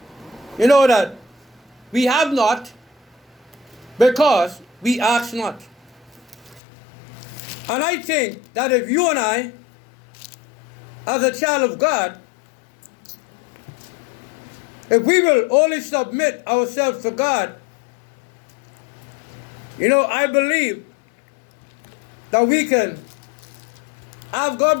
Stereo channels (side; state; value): right; drops out; at 6.6 s